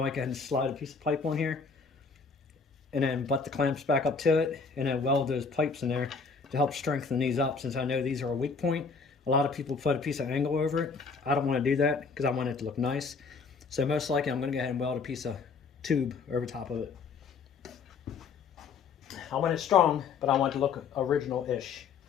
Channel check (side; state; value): right; quieter; 5.1 dB